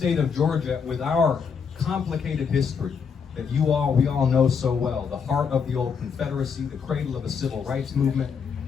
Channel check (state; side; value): quieter; right; 6.2 dB